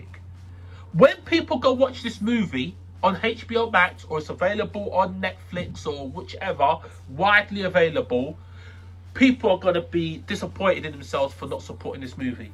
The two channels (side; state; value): both; identical; correlation 1.00